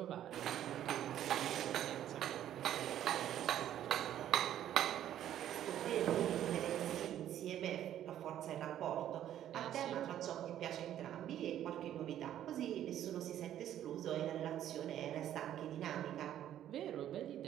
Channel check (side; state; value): left; quieter; 11.4 dB